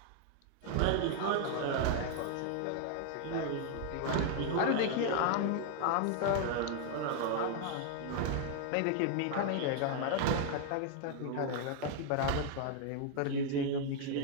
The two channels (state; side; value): different; both; correlation 0.00